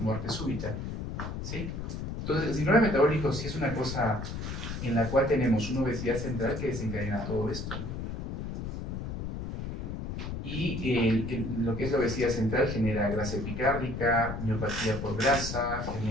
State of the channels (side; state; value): left; noise; rumble, 5 dB below the sound